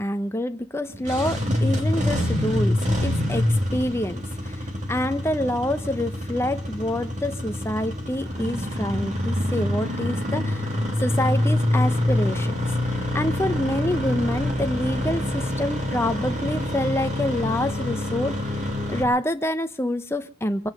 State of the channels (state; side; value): normal; both; correlation 0.83